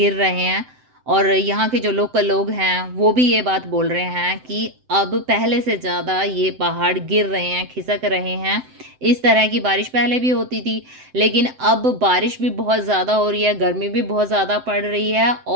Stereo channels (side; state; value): left; late; 7.8 ms